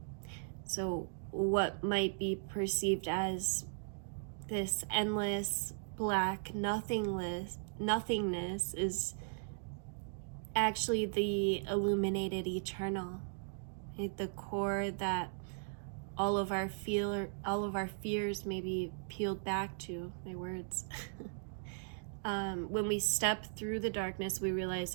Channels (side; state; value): left; silent; digital silence